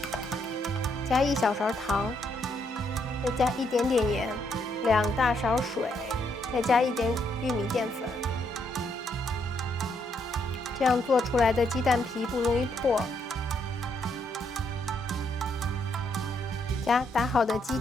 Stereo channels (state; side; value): normal; both; correlation 0.74